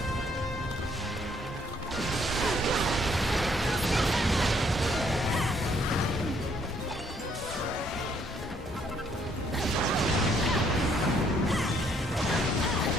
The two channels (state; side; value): normal; both; correlation 0.67